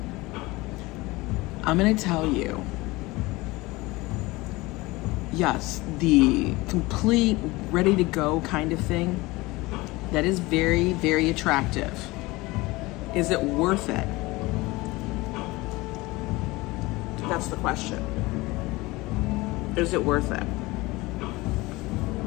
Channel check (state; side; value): quieter; right; 21.5 dB